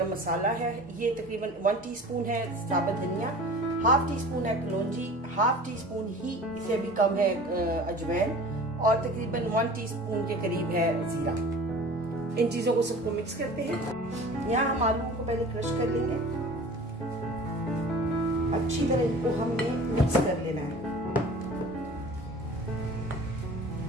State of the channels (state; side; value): normal; both; correlation 0.42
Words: मसाला है, ये तकरीबन 1 टीस्पून है साबुत धनिया, 1/2 टीस्पून है कलौंजी, 1/2 टीस्पून ही से भी कम है अजवाइन, और तकरीबन 1 टीस्पून के करीब है जीरा। इन चीजों को सबको मिक्स करते हैं। यहाँ हम आलू को पहले क्रश कर लेंगे, अच्छी तरह इनको हमने मिक्स कर लेना है।